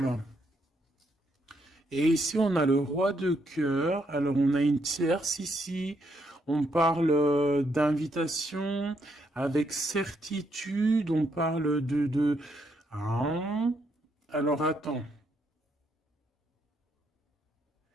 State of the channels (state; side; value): normal; both; correlation 0.76